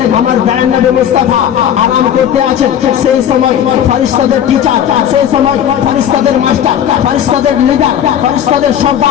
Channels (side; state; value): right; quieter; 9.6 dB